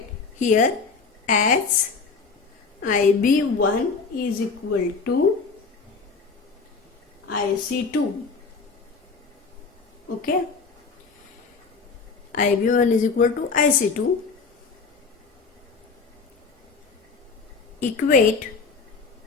here as IB1 is equal to IC2. Okay, IB1 is equal to IC2. Equate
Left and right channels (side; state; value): right; quieter; 4.7 dB